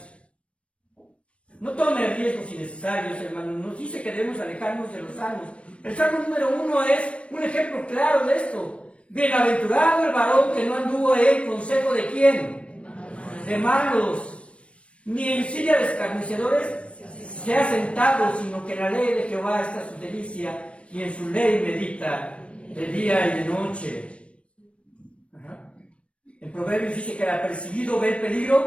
No tome riesgos innecesarios, hermanos. Nos dice que debemos alejarnos de los salmos. El salmo número 1 es un ejemplo claro de esto. Bienaventurado el varón que no anduvo en consejo de ¿quién? De malos, ni en silla de escarnecedores se ha sentado, sino que en la ley de Jehová está su delicia, y en su ley medita de día y de noche. Ajá. En Proverbios dice que el apercibido ve el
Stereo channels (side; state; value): right; late; 0.061 ms